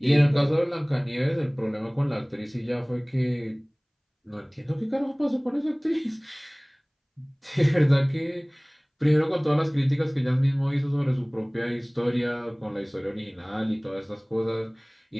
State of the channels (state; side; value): identical; both; correlation 1.00